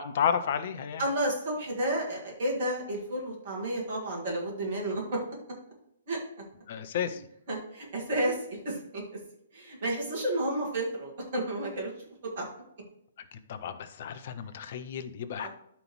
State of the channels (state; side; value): inverted; both; correlation -0.54